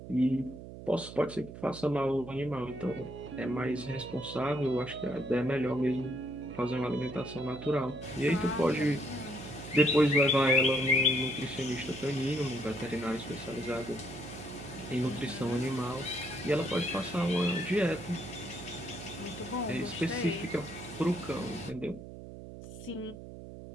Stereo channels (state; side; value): noise; right; hum, 13 dB below the sound